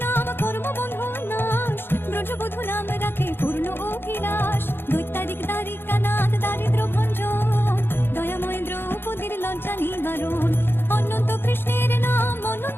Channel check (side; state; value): right; late; 0.10 ms